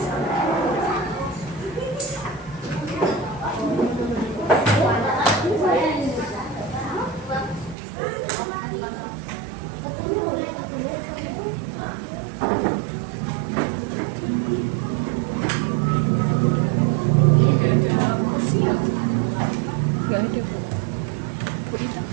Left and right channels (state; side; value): drops out; left; at 7.8 s